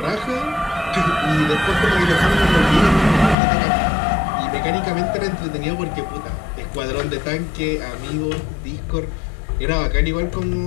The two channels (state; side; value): drops out; right; at 3.4 s